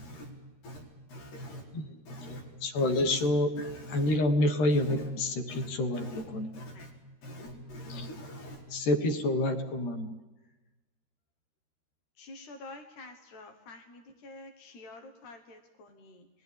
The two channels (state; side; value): late; right; 13 ms